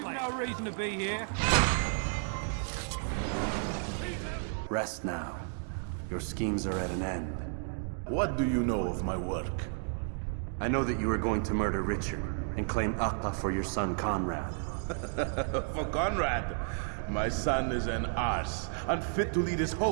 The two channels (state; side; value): silent; left; 56 dB below the other